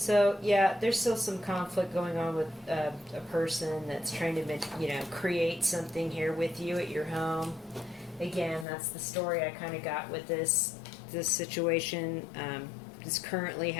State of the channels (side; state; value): right; drops out; at 8.7 s